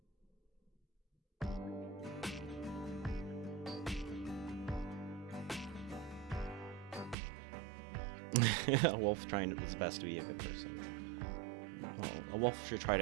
A wolf trying its best to be a good person. Well, a wolf should try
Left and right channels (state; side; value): drops out; left; at 7.2 s